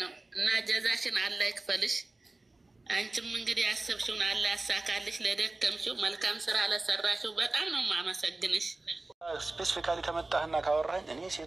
ነው እና ጀዛሽን አላህ ይክፈልሽ። አንቺም እንግዲህ ያሰብሽውን አላህ ያሳካልሽ። ለደከምሽው መልካም ስራ ለሰራሽው በጣም ነው የማመሰግንሽ። ስፔሲፊካሊ ከመጣህና ካወራኝ እኔ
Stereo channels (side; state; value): left; quieter; 3.0 dB